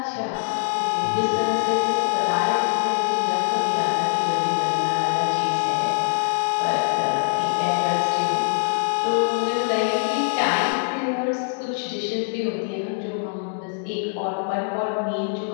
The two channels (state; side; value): silent; right; digital silence